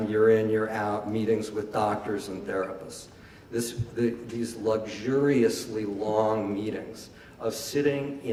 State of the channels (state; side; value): identical; both; correlation 1.00